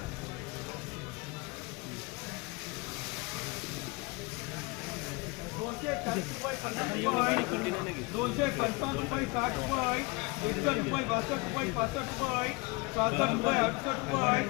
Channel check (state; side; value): quieter; right; 26.1 dB